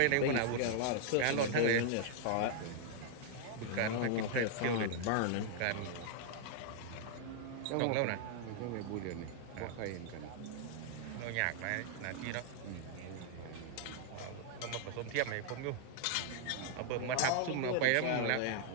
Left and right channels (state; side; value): different; both; correlation -0.01